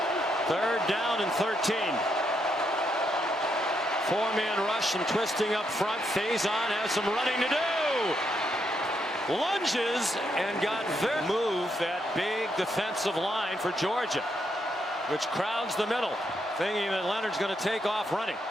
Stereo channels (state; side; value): normal; both; correlation 0.78